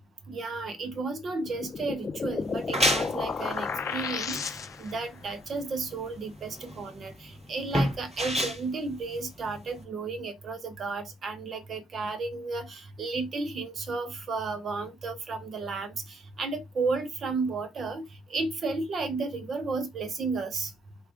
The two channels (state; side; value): normal; both; correlation 0.68